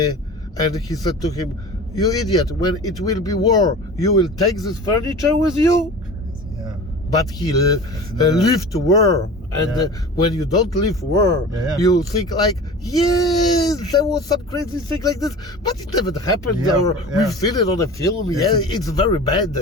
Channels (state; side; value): normal; both; correlation 0.36